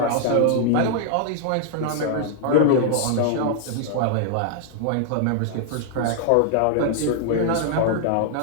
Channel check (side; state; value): both; different; correlation -0.01